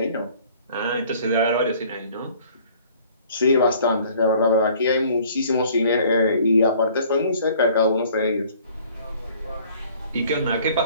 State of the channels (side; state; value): both; inverted; correlation -0.55